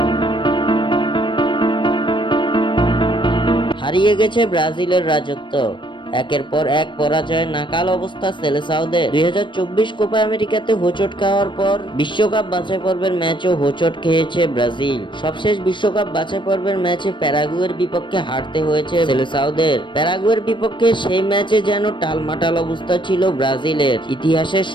হারিয়ে গেছে ব্রাজিলের রাজত্ব। একের পর এক পরাজয়ে নাকাল অবস্থা সেলেসাওদের। 2024 কোপা আমেরিকাতে হোঁচট খাওয়ার পর বিশ্বকাপ বাছাই পর্বের ম্যাচও হোঁচট খেয়েছে ব্রাজিল। সবশেষ বিশ্বকাপ বাছাই পর্বের ম্যাচে প্যারাগুয়ের বিপক্ষে হারতে হয়েছে সেলেসাওদের। প্যারাগুয়ের বিপক্ষে সেই ম্যাচে যেন টালমাটাল অবস্থা ছিল ব্রাজিলের। ইতিহাসের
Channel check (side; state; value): right; late; 0.23 ms